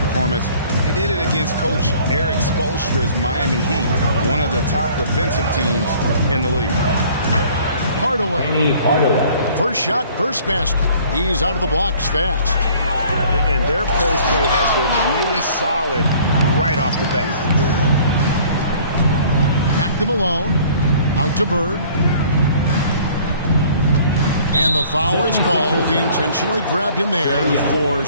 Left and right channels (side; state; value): both; inverted; correlation -0.54